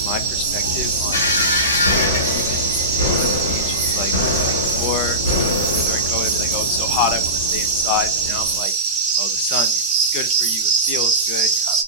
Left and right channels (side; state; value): both; normal; correlation -0.16